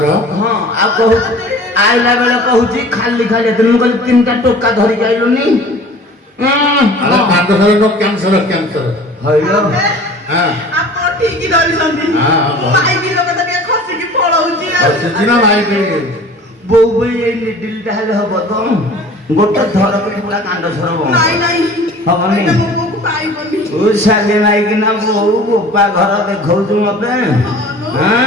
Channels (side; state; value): both; normal; correlation 0.45